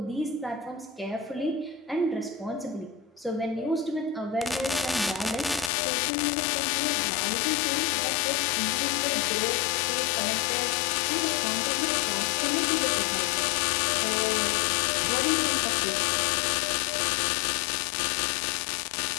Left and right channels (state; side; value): drops out; right; at 5.7 s